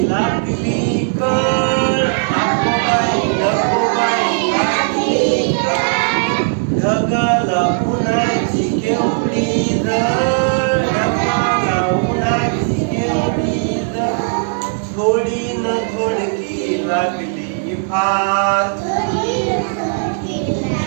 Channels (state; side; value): silent; left; 66 dB below the other